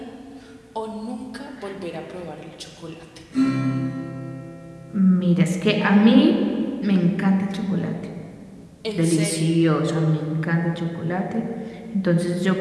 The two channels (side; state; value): both; identical; correlation 1.00